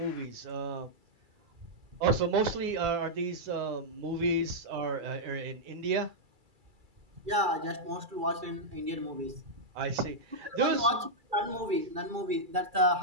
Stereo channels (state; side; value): late; left; 2.3 ms